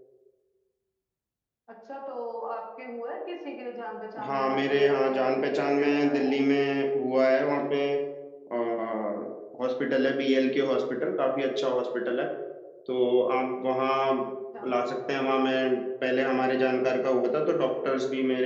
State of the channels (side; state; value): both; identical; correlation 1.00